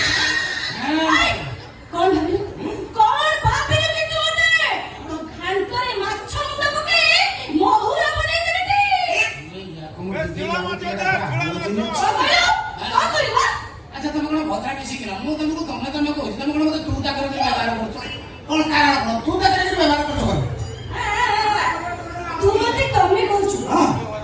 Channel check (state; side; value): identical; both; correlation 1.00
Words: କଣ ଭାବିଲୁ କିନ୍ତୁ ମତେ ତ ଘାଣ୍ଟରେ ମାଛ ମୁଣ୍ଡ ପକେଇ ମହୁରା ବନେଇ ଦେବି ଆଚ୍ଛା ତମେ କଣ ଭଦ୍ରା କିଛି କିଲ ମୁଁ ତମକୁ ତମେ କହୁଛି ତମେ କଣ ମତେ ତୁ ତା କରି ବ୍ୟବହାର କରୁଛ କଣ କାରଣ କଣ ତୁ ତା କରି ବ୍ୟବହାର କରୁଛ ତୁ ମତେ ତମେ କହୁଛୁ